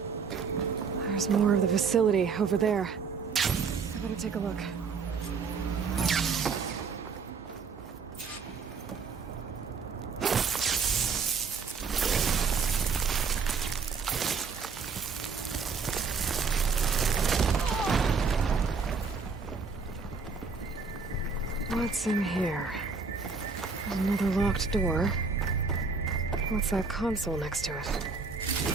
There's more of the facility over there. I better take a look. What's in here? There's another locked door. What's that console next to it?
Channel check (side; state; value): left; quieter; 5.1 dB